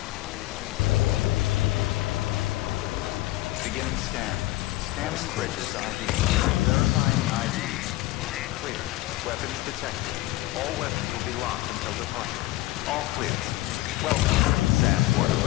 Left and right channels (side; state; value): right; quieter; 17.7 dB